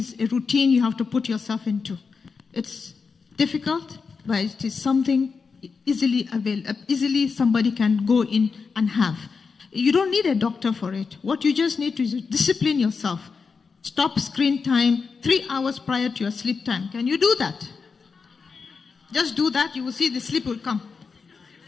a routine you have to put yourself into. It's difficult, but it is something easily somebody can go in and have. You don't need a doctor for it. What you just need to is discipline yourself. Stop screen time 3 hours prior to your sleep time. Can you do that? Just do that, you will see the sleep will come.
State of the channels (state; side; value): quieter; right; 5.1 dB